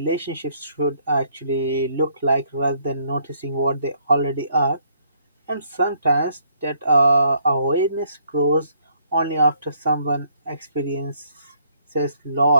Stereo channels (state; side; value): inverted; both; correlation -0.67